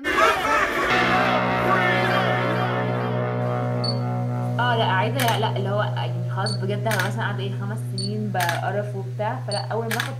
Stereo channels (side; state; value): both; identical; correlation 1.00